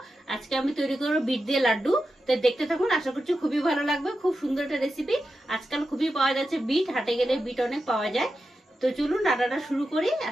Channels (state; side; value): normal; both; correlation 0.90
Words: আজকে আমি তৈরি করব বিট দিয়ে লাড্ডু। তো দেখতে থাকুন, আশা করছি খুবই ভালো লাগবে। খুব সুন্দর একটা রেসিপি। আজকাল খুবই পাওয়া যাচ্ছে বিট, হাটে গেলে বিট অনেক পাওয়া যায়। তো চলুন রান্নাটা শুরু করি,